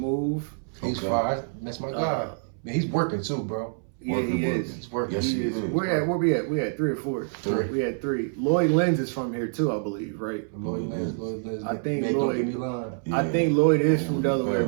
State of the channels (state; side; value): silent; left; 61 dB below the other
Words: He's fire. That's my guy. Man, he's working too, bro. Yeah, he is. He's working. Yes, he is. Where we at? We had 3 or 4. 3. We had 3. Lloyd Lenz is from here too, I believe, right? Lloyd Lenz. I think man, Lloyd- don't get me lying. I think Lloyd is from Delaware,